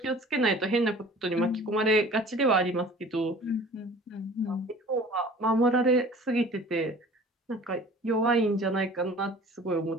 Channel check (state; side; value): normal; both; correlation 0.46